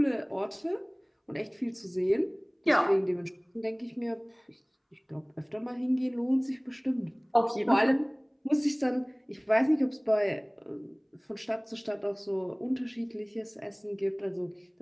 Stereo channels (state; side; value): identical; both; correlation 1.00